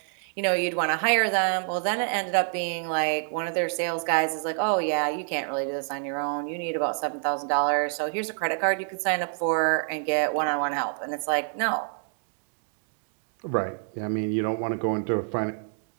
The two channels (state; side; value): silent; left; 59 dB below the other